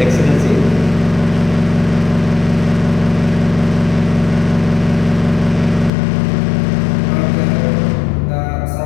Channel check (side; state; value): right; drops out; at 5.9 s